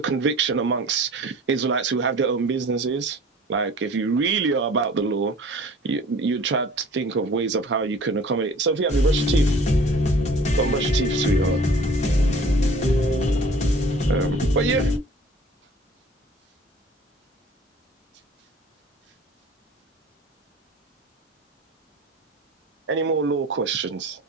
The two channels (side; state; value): both; normal; correlation 0.47